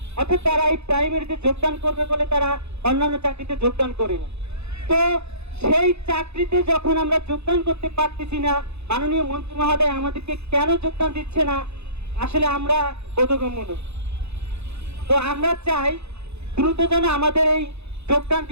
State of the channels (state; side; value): late; left; 0.80 ms